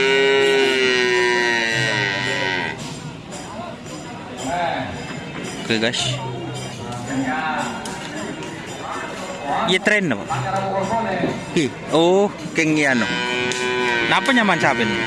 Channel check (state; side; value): identical; both; correlation 1.00